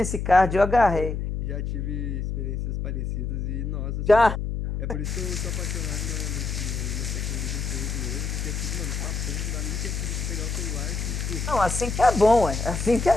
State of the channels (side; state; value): left; noise; hum, 2 dB below the sound